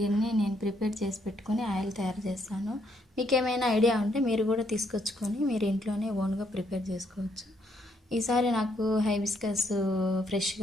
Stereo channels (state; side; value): normal; both; correlation 0.73